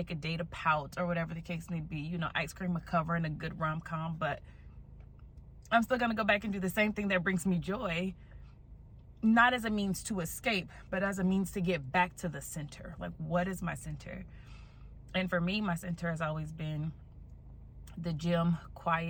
a day to pout, or whatever the case may be. You know, ice cream, a cover, and a good rom-com. But I'm still going to go back and do the same thing that brings me joy. Not as a means to escape, but as a means to get back to the center. Like, what is my center? And for me, my center has always been the gym,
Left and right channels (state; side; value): identical; both; correlation 1.00